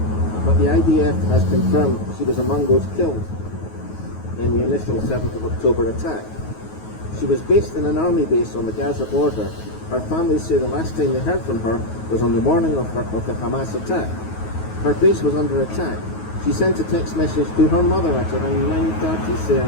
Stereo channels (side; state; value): right; late; 9.4 ms